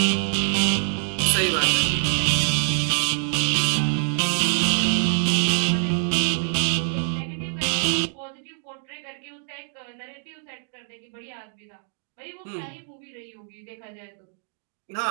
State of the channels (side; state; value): left; silent; digital silence